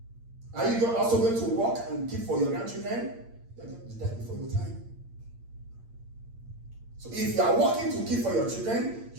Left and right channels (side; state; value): left; late; 8.7 ms